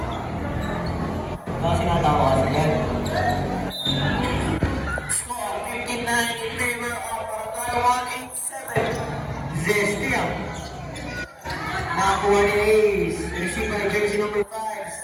Kasi natawa kasi yan. Score 59 in favor of Barangay 187. Zestiam. Nakakuha ni Ace. Received by jersey number 5.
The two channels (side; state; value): both; identical; correlation 1.00